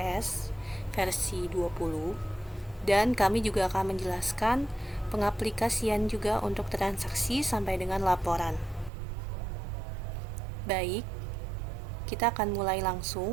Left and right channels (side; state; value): left; drops out; at 8.9 s